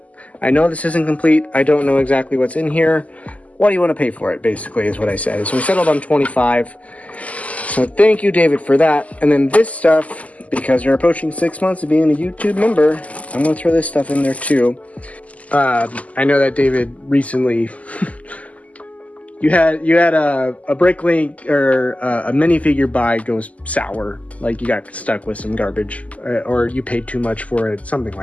I know this isn't complete. I don't know exactly what's in here. What do you want to pay for it, basically, is what I said. So we settled on 25. So thank you, David, for that. And then this stuff, because you're approaching 6 months of being a YouTube member, I'm going to throw this stuff in there too. I know that David recently, you had a Bricklink or a minifigure buy goes sour, like you got stuck with some garbage, or you paid too much for it, something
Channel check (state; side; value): late; right; 0.071 ms